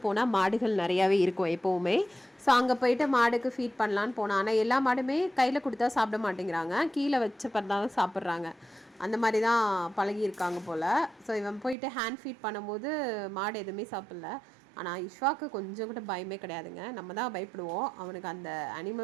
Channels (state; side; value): drops out; left; at 11.8 s